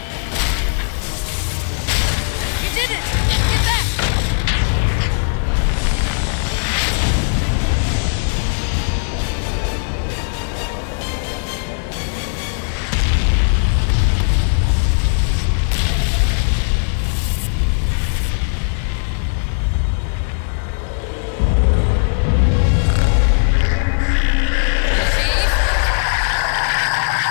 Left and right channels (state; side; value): silent; right; digital silence